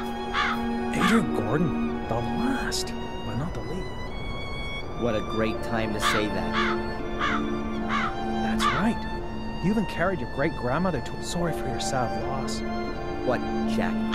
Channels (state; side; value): identical; both; correlation 1.00